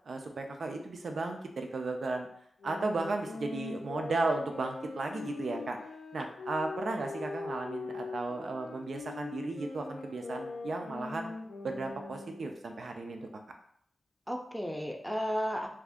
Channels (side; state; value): both; normal; correlation 0.90